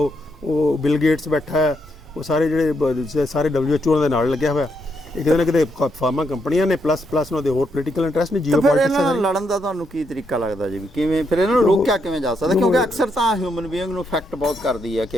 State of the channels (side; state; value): both; normal; correlation 0.78